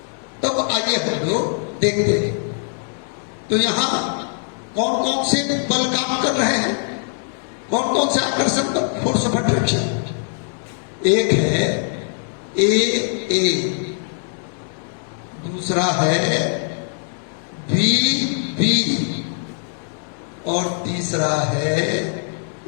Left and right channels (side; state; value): right; silent; digital silence